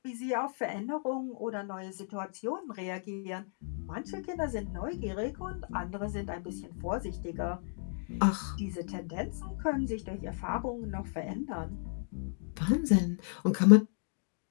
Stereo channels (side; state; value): right; silent; digital silence